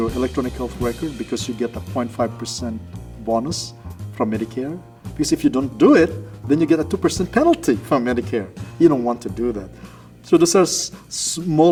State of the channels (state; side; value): identical; both; correlation 1.00